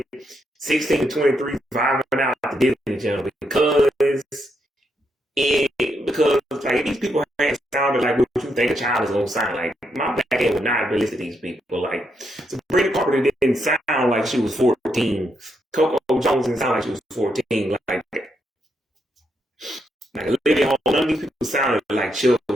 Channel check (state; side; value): normal; both; correlation 0.79